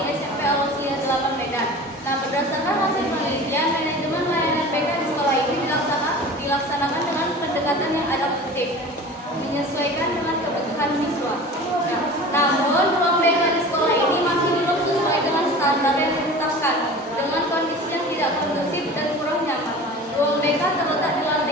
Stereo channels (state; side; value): normal; both; correlation 0.38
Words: SMP Al-Wasliyah Lapan Medan. Nah, berdasarkan hasil penelitian, manajemen layanan BK di sekolah ini dilaksanakan dengan pendekatan yang adaptif, menyesuaikan dengan kebutuhan siswa. Nah, namun ruang BK di sekolah ini masih belum sesuai dengan standar yang ditetapkan, dengan kondisi yang tidak kondusif dan kurang nyaman. Ruang BK terletak di